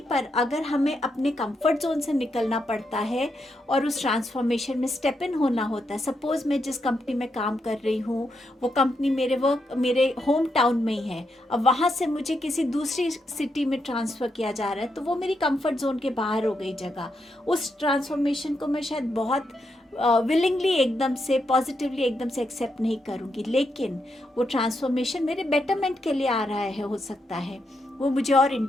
अगर हमें अपने कंफर्ट जोन से निकलना पड़ता है और उस ट्रांसफॉर्मेशन में स्टेप इन होना होता है। सपोज मैं जिस कंपनी में काम कर रही हूँ वो कंपनी मेरे होम टाउन में ही है, अब वहाँ से मुझे किसी दूसरी सिटी में ट्रांसफ़र किया जा रहा है तो वो मेरी कंफर्ट जोन के बाहर हो गई जगह। उस ट्रांसफॉर्मेशन को मैं शायद बहुत विलिंगली एकदम से पॉजिटिवली एकदम से एक्सेप्ट नहीं करूँगी, लेकिन वो ट्रांसफॉर्मेशन मेरे बेटरमेंट के लिए आ रहा है। हो सकता है वो मुझे और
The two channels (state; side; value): normal; both; correlation 0.82